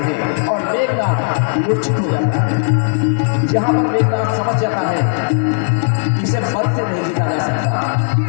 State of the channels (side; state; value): right; silent; 69 dB below the other